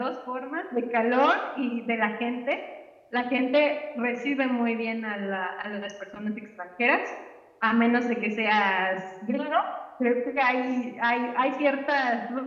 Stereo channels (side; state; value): both; identical; correlation 1.00